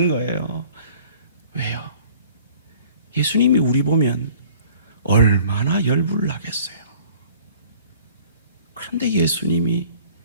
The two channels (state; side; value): inverted; both; correlation -0.51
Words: 거예요. 왜요? 예수님이 우리 보면 얼마나 열불 나겠어요. 그런데 예수님이